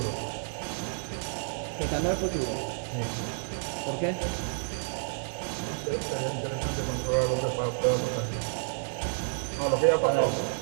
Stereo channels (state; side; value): silent; left; digital silence